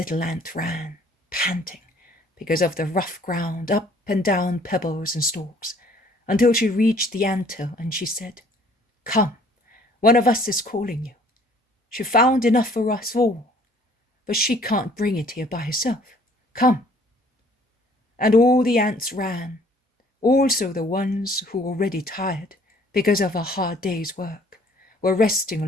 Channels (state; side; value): normal; both; correlation 0.57